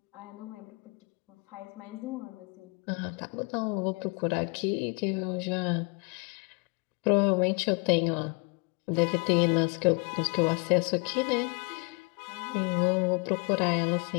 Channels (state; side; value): quieter; right; 32.7 dB